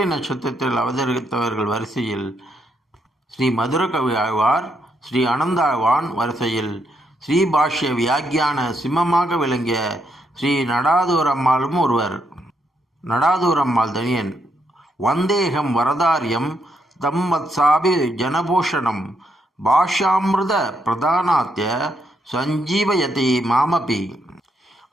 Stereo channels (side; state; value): both; normal; correlation 0.77